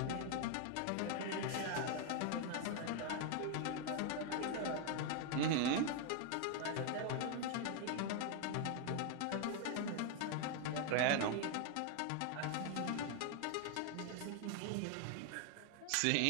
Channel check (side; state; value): both; different; correlation 0.00